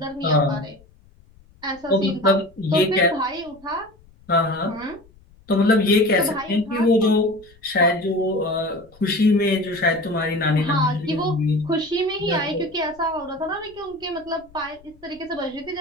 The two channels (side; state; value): left; noise; rumble, 27 dB below the sound